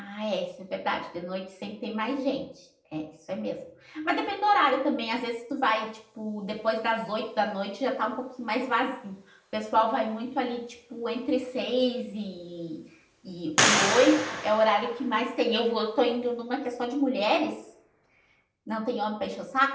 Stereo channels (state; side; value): identical; both; correlation 1.00